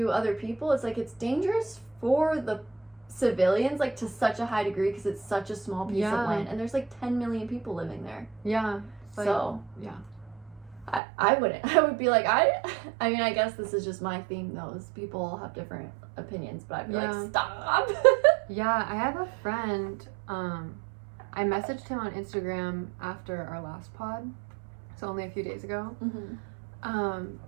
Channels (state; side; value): drops out; left; at 11.0 s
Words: other people, it's like it's dangerous for the civilians, like, to such a high degree, because it's such a small piece of land, and there's like 10 million people living there. Like, so I wouldn't. I would be like, I mean, I guess this is just my theme, though. People all have different opinions, but I'd be like, stop. I have a friend, I messaged him on Instagram after our last pod, so only a few days ago,